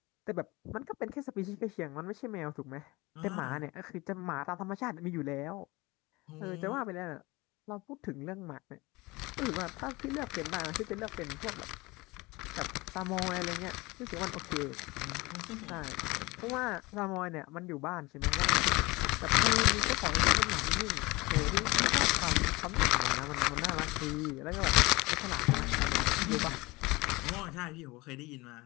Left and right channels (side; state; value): right; quieter; 22.7 dB